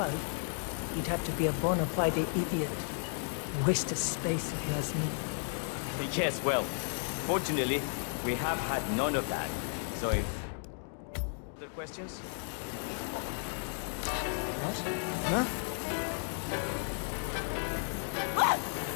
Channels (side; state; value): right; silent; 55 dB below the other